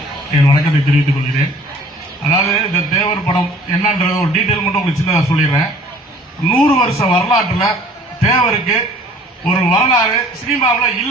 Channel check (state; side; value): normal; both; correlation 0.52